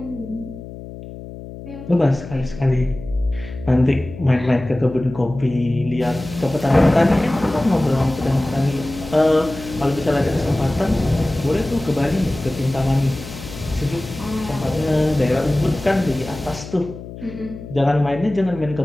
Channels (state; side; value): noise; left; hum, 13 dB below the sound